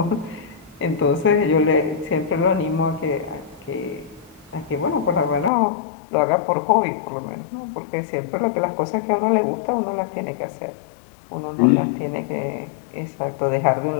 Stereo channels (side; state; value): right; drops out; at 5.5 s